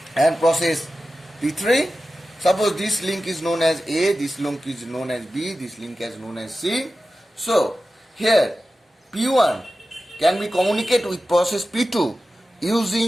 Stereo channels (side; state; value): both; normal; correlation 0.93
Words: and process P3. Suppose this link is known as A, this link is known as B, this link is known as C. So here P1 can be communicate with process P2